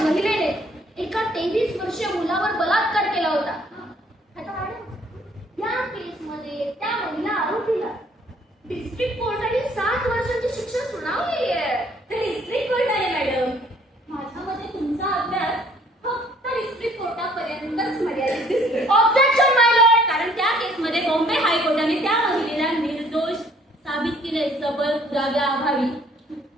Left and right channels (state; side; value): normal; both; correlation 0.60